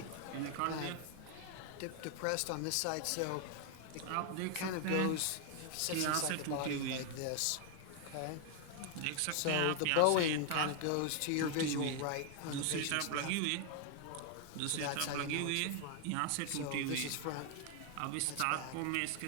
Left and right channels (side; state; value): both; different; correlation 0.01